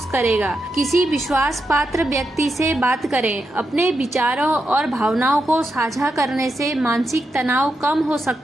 करेगा। किसी विश्वास पात्र व्यक्ति से बात करें। अपने विचारों और भावनाओं को साझा करने से मानसिक तनाव कम हो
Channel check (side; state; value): both; normal; correlation 0.86